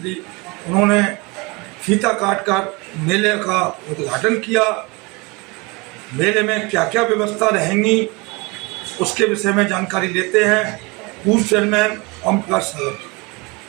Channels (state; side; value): quieter; left; 26.9 dB